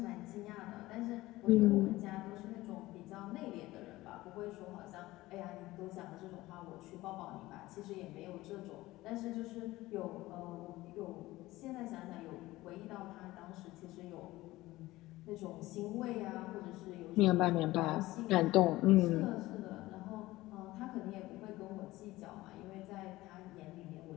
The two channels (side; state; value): right; quieter; 18.1 dB